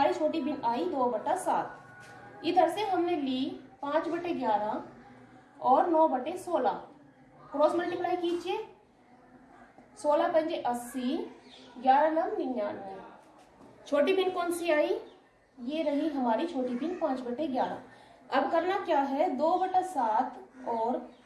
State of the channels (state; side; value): identical; both; correlation 1.00